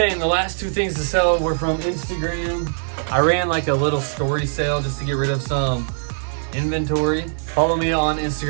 and the last 2 things to sell were from Instagram. I ran like a little story sale just to get rid of some inventory. Follow me on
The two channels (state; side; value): silent; left; digital silence